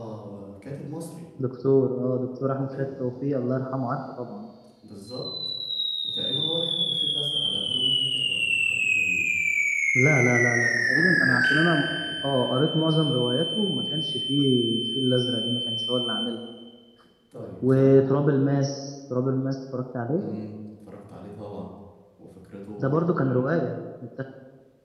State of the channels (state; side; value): identical; both; correlation 1.00